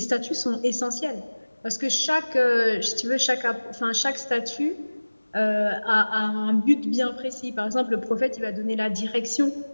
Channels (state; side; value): inverted; both; correlation -1.00